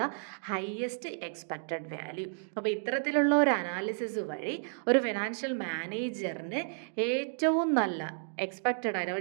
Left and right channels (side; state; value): left; silent; 57 dB below the other